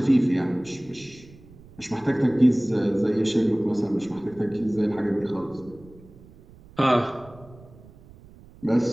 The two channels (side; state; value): right; noise; rumble, 23 dB below the sound